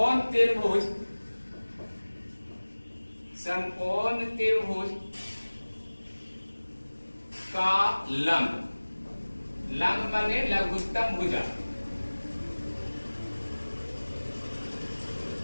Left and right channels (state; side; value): inverted; both; correlation -1.00